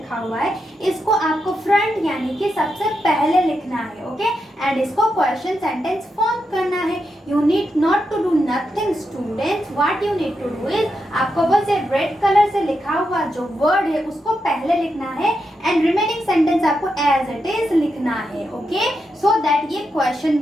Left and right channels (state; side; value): normal; both; correlation 0.85